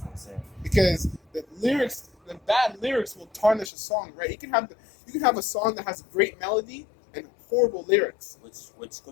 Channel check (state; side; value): drops out; right; at 3.7 s